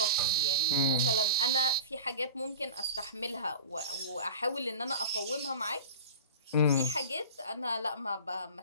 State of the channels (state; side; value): inverted; both; correlation -0.34